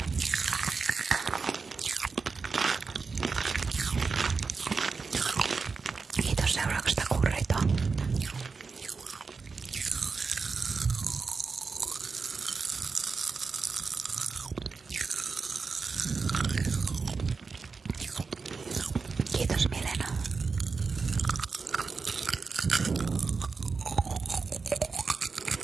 Kiitos seurauksesta Kurrito. Kiitos Milena.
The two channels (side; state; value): left; quieter; 4.7 dB